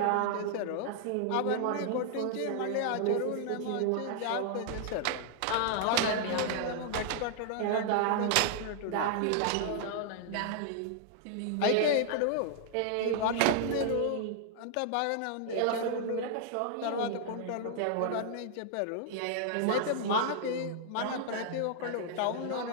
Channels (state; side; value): different; both; correlation -0.01